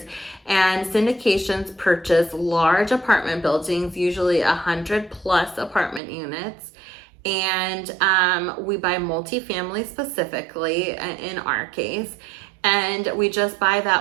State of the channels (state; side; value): drops out; left; at 6.0 s